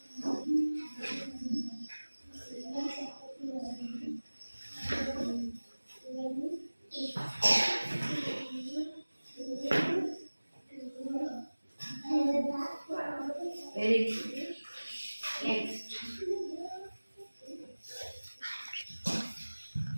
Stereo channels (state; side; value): inverted; both; correlation -1.00